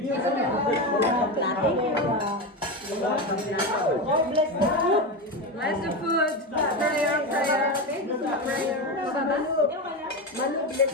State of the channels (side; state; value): both; normal; correlation 0.17